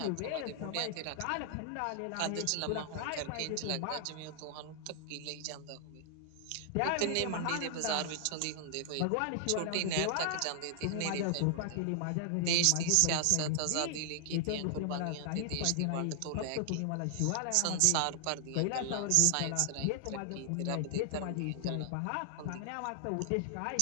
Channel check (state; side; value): different; both; correlation 0.00